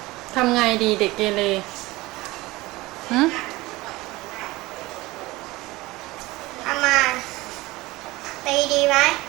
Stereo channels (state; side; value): quieter; left; 20.3 dB